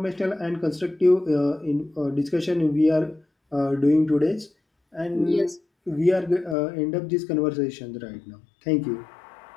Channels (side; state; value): right; drops out; at 6.6 s